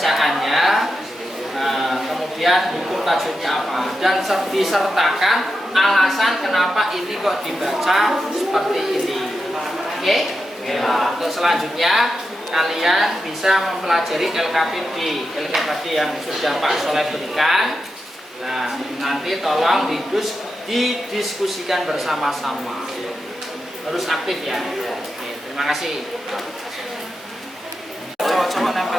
Kemudian hukum tajwidnya apa dan disertakan alasan kenapa ini kok dibaca seperti ini. Oke? Untuk selanjutnya kalian bisa mempelajari LKPD yang sudah Pak Soleh berikan. Nah, nanti tolong didiskusikan bersama-sama. Harus aktif ya. Oke, terima kasih. Coba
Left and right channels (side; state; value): both; normal; correlation 0.88